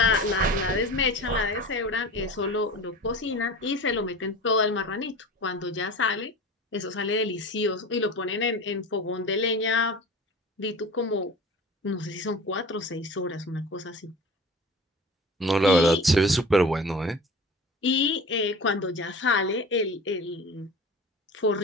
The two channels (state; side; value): normal; both; correlation 0.36